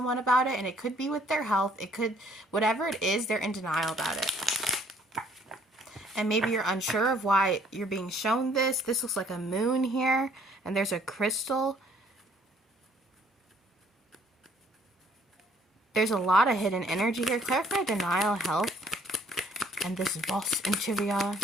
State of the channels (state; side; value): normal; both; correlation 0.62